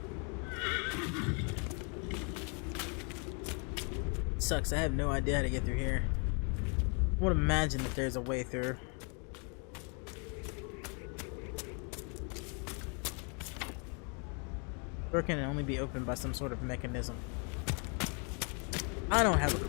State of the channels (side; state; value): right; quieter; 37.2 dB